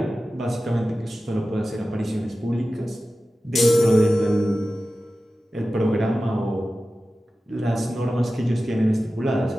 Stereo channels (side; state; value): both; normal; correlation 0.94